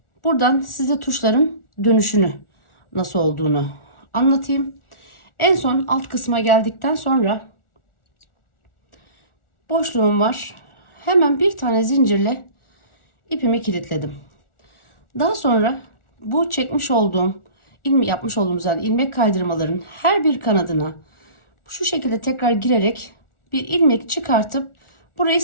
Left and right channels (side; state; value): right; late; 1.4 ms